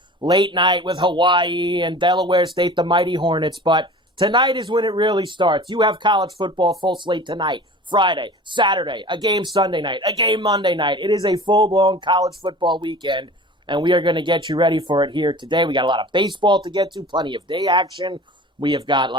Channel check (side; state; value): both; normal; correlation 0.40